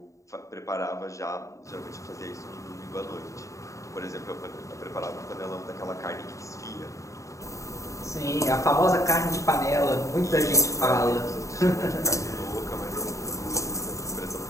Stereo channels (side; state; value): right; late; 0.15 ms